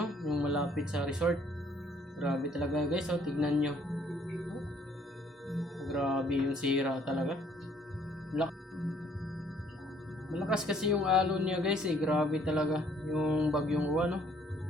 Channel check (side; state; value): both; normal; correlation 0.63